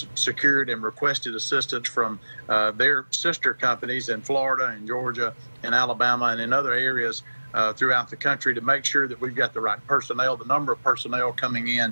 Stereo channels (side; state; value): both; inverted; correlation -1.00